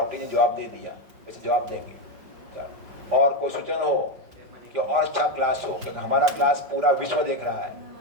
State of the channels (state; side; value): late; left; 5.3 ms